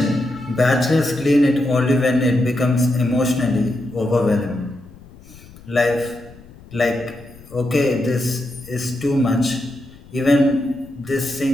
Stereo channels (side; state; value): left; noise; rumble, 21 dB below the sound